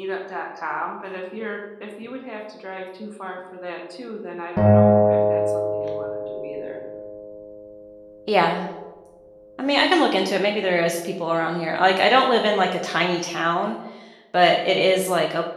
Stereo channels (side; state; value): both; identical; correlation 1.00